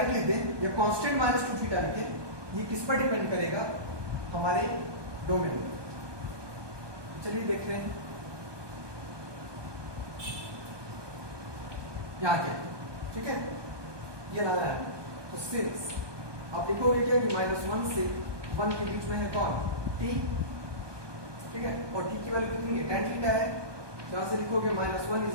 लिख दें या कांस्टेंट माइनस 2 थीटा लिखें, ये किस पर डिपेंड करेगा, हमारे डोमेन पर। चलिए देख रहे हैं यहाँ क्या, ठीक है, ये लाना है। तो सिंस आप लिखोगे क्या कि -1 से 1 के बीच में है कौन, t, ठीक है, और t की वैल्यू कितनी है, tan थीटा है। यहां से लिखोगे -1 is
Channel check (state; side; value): late; left; 1.2 ms